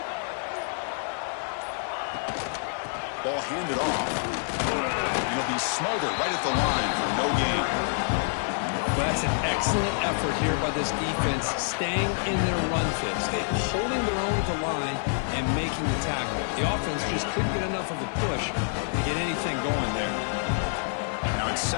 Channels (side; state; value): right; silent; 60 dB below the other